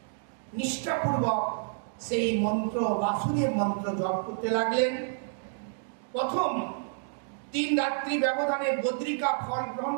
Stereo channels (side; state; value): left; silent; digital silence